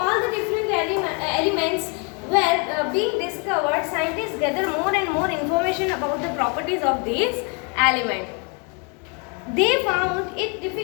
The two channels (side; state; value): right; quieter; 34.9 dB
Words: all the different elements were being discovered. Scientists gather more and more information about the properties of these elements. They found it